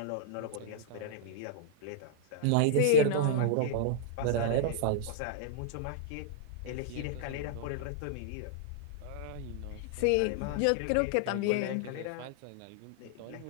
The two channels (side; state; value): both; different; correlation -0.02